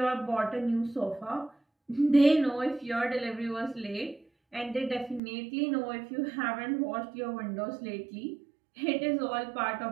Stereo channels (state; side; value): drops out; left; at 5.2 s